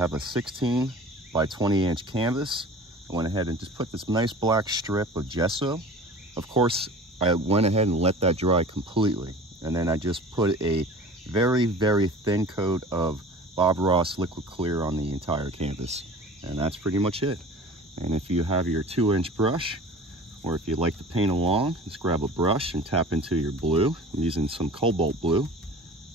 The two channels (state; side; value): normal; both; correlation 0.41